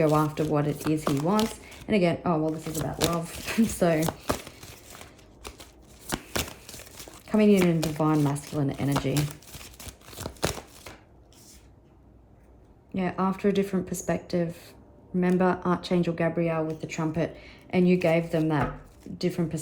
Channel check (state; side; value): identical; both; correlation 1.00